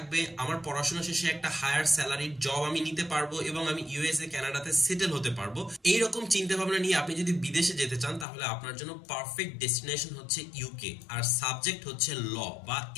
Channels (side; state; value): right; drops out; at 8.2 s